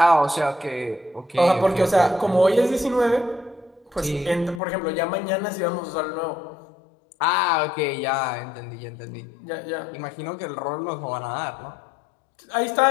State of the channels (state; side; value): drops out; right; at 4.6 s